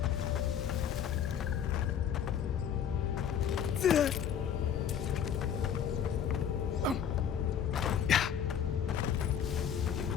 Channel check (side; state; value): right; quieter; 8.5 dB